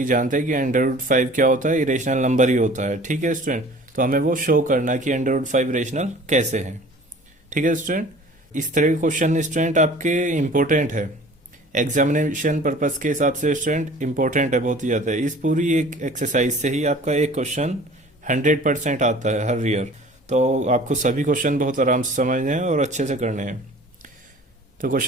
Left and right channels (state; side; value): normal; both; correlation 0.46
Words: जानते हैं कि √5 क्या होता है, इरेशनल नंबर ही होता है। ठीक है स्टूडेंट, तो हमें वो शो करना कि √5 इरेशनल कैसे है। ठीक है स्टूडेंट, इस तरह के क्वेश्चन स्टूडेंट आपके इम्पोर्टेंट है, एग्जामिनेशन पर्पस के हिसाब से स्टूडेंट इम्पोर्टेंट है बहुत ही ज़्यादा। इस पूरी एक एक्सरसाइज से ही आपका एक क्वेश्चन 100% आता है हर ईयर। तो आपको सभी क्वेश्चन बहुत आराम से समझने हैं और अच्छे से करने हैं। तो